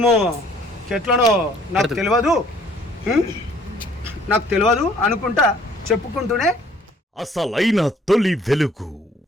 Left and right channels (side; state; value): both; normal; correlation 0.58